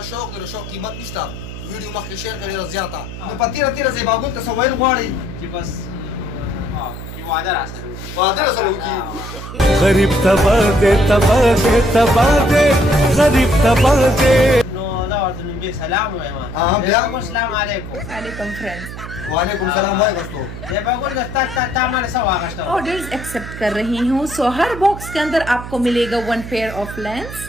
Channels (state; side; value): noise; right; hum, 10 dB below the sound